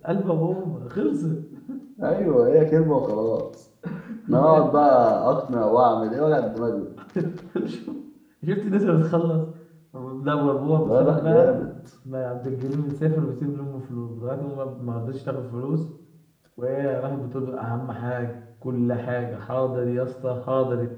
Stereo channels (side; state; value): both; identical; correlation 1.00